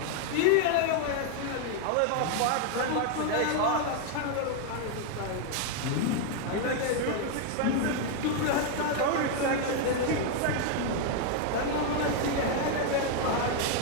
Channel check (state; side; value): different; both; correlation 0.00